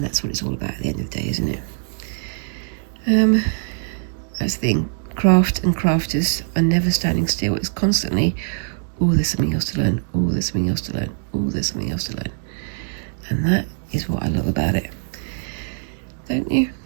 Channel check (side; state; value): left; silent; digital silence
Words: that's what it's all about at the end of the day, isn't it? That's the thing. Craft and crafters are never standing still. It's constantly, oh, there's something else to learn. Oh, there's something else to learn. Oh, there's something else to learn. And that is what I love about it. Don't you?